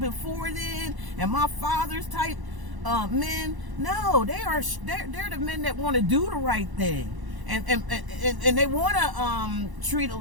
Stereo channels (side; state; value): left; late; 1.0 ms